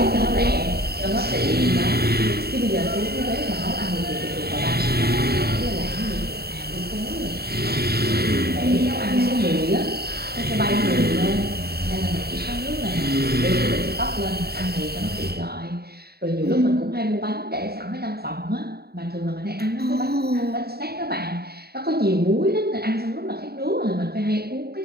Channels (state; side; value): late; left; 0.46 ms